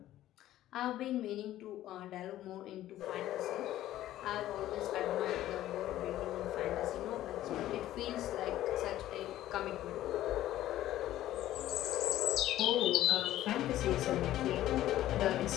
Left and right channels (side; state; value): right; quieter; 13.8 dB